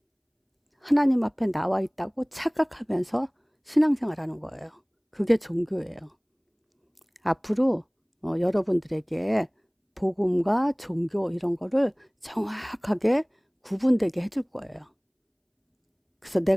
하나님 앞에 나와 있다고 착각하면서 신앙생활 하는 거예요. 그게 종교예요. 앞으로 여러분들에게 복음과 종교 이런 거를 정확하게 구분되게 해줄 거예요. 그래서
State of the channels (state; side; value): identical; both; correlation 1.00